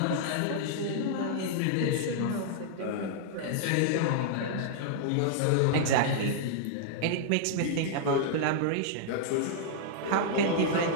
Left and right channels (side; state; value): both; different; correlation -0.01